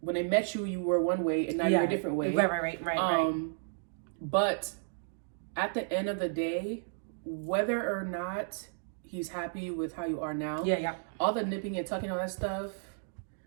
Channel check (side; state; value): left; silent; digital silence